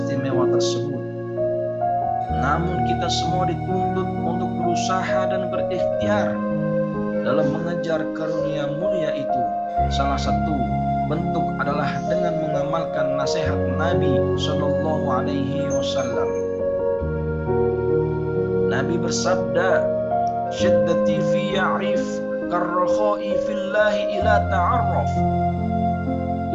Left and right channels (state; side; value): identical; both; correlation 1.00